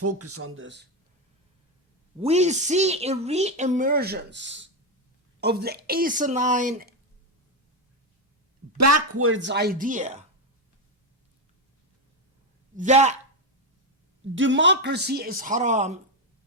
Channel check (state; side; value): normal; both; correlation 0.08